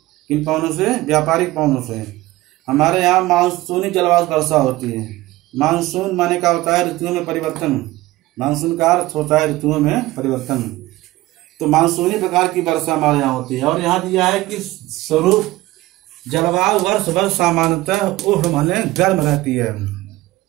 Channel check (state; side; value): quieter; left; 18.1 dB